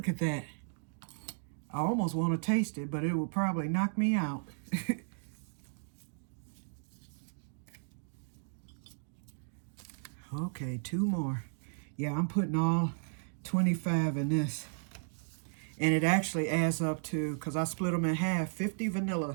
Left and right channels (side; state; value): left; silent; digital silence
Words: at that. I almost want to taste it, but it will probably knock me out. Okay, 2 more. Yeah, I'm putting all 25 in this. And it actually adds up to, because I split them in half, 50